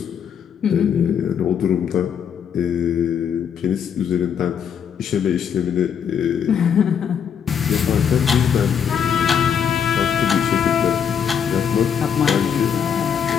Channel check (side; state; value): right; quieter; 7.8 dB